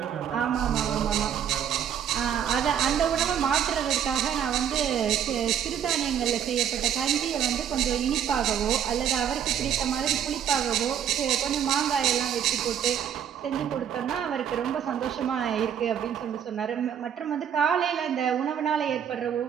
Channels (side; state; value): left; quieter; 9.0 dB